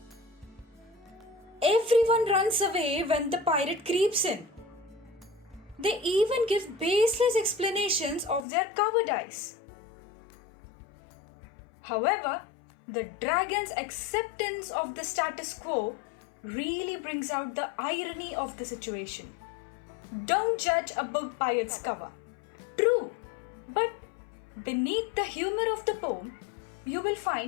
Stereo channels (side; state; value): right; drops out; at 8.5 s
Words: Everyone runs away when the pirate creeps in. They even give baseless explanations of their cowardice. However, the dragon's acceptance of the status quo really brings out the irony of the situation. Don't judge a book by its cover. True, but beneath the humor of the poem, you will